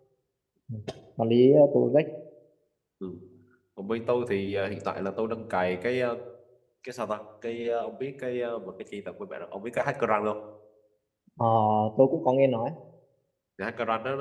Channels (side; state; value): both; identical; correlation 1.00